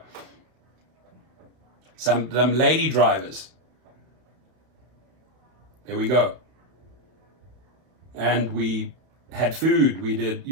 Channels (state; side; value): late; left; 32 ms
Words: Some lady drivers. There we go. And we had food. We did,